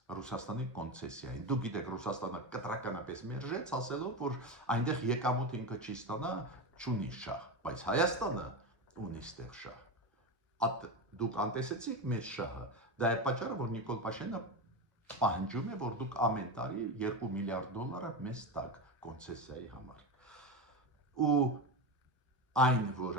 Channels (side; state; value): both; normal; correlation 0.18